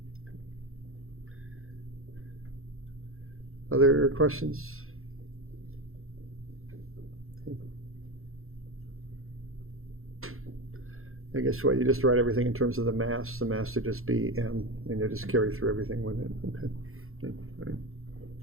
Other questions? I guess what, you just write everything in terms of the mass. The mass would just be m, and you just carry through everything with it. Okay. Okay.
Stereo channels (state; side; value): late; left; 0.62 ms